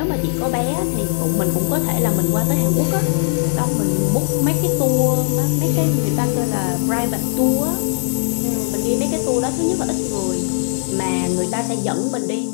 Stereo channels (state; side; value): silent; right; digital silence